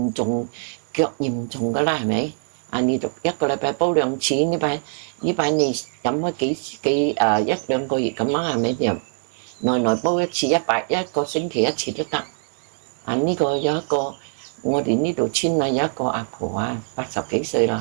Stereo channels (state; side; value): silent; left; 64 dB below the other